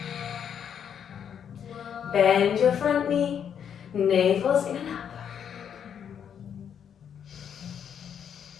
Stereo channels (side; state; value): right; quieter; 8.3 dB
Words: Bend your front knee. Navel's in and up.